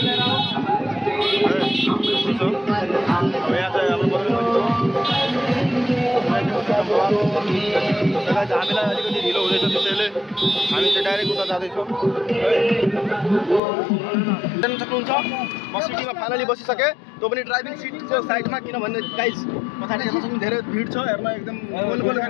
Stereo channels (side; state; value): right; drops out; at 13.6 s